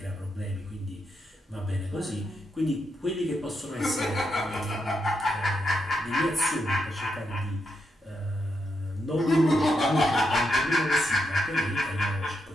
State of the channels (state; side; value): normal; both; correlation 0.82